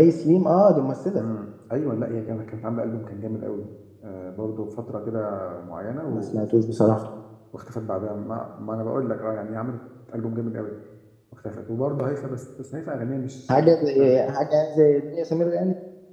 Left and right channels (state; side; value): identical; both; correlation 1.00